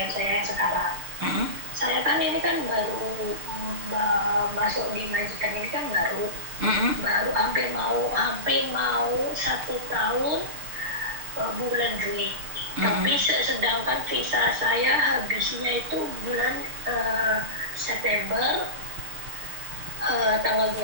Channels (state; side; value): late; left; 6.7 ms